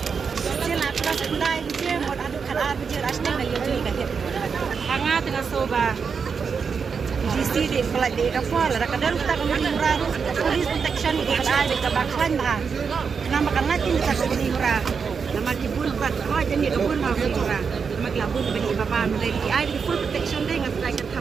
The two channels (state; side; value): quieter; left; 5.9 dB